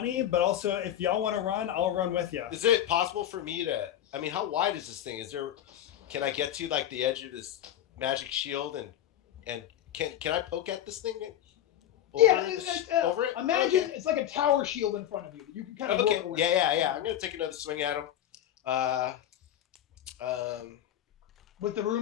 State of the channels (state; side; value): quieter; right; 11.3 dB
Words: but also if y'all want to run, I'll run with you. Is it possible for me to, I mean, how wide is this thing? Can I get to like the edge of this magic shield and can I poke at this thing? Over it? Imagine Okay. it's like a tower shield in front of you. You can kind of Okay. work away. Yeah. I'm gonna take another swing at him. With the rune